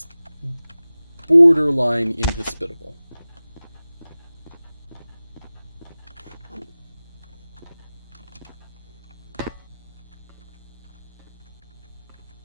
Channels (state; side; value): inverted; both; correlation -0.97